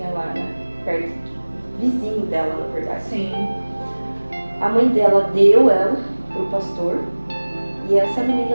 lá, né, perto, vizinho dela, na verdade. Sim. A mãe dela deu ela pro pastor e essa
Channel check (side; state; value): both; inverted; correlation -1.00